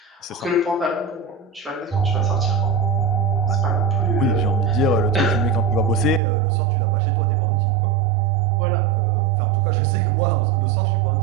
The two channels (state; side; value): drops out; left; at 6.2 s